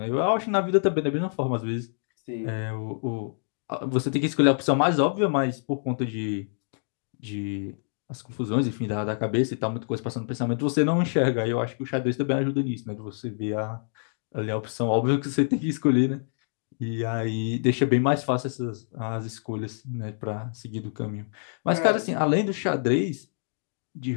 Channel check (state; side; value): silent; right; digital silence